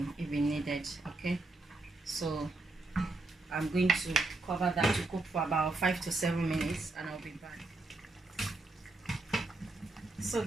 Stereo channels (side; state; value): left; quieter; 3.2 dB